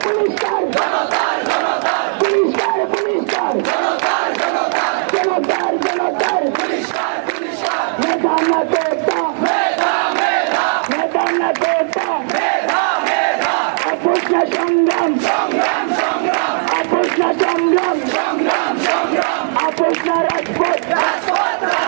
পুলিশকার পুলিশকার পুলিশকার জনতার জনতার মেধা না তোটা মেধা না তোটা আপোষ না সংগ্রাম আপোষ না সংগ্রাম আপোষ না রাজপথ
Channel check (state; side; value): silent; left; digital silence